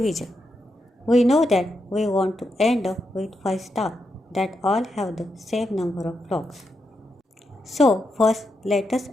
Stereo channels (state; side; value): normal; both; correlation 0.84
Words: We know that we want to end up with 5 stars that all have the same number of blocks. So first let us